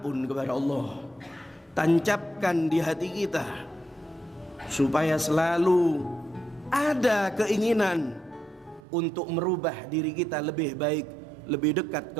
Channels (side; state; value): left; drops out; at 8.8 s